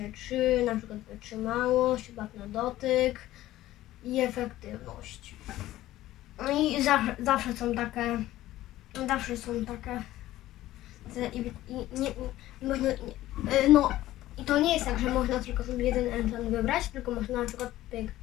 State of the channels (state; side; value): quieter; right; 15.1 dB